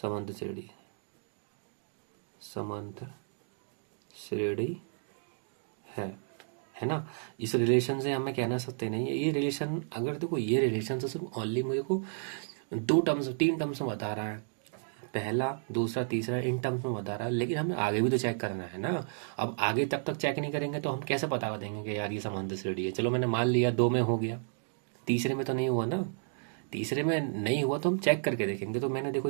समांतर श्रेणी, समांतर श्रेणी है ना। इस रिलेशन से हमें कहना सकते नहीं है ये रिलेशन, अगर देखो ये रिलेशन से सिर्फ ओनली मुझे को तीन टर्म्स में बता रहा है, पहला दूसरा तीसरा इन टर्म्स में बता रहा है, लेकिन हमें आगे भी तो चेक करना है ना। अब आगे तब तक चेक नहीं करेंगे तो हम कैसे पता देंगे कि यार ये समांतर श्रेणी है। चलो मैंने मान लिया 2 में हो गया, तीसरे में तो नहीं हुआ ना। तीसरे में नहीं हुआ तो हम चेक करके देखेंगे। तो मैंने देखो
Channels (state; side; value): silent; left; digital silence